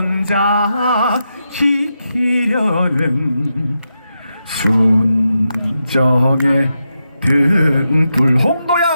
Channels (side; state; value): both; inverted; correlation -0.86